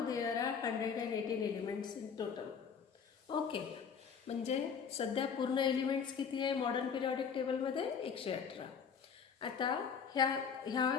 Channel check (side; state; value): right; quieter; 6.6 dB